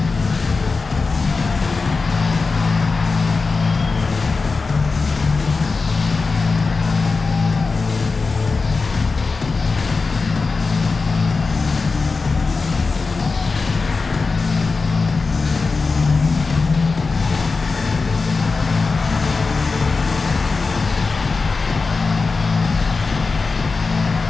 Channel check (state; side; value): quieter; right; 4.2 dB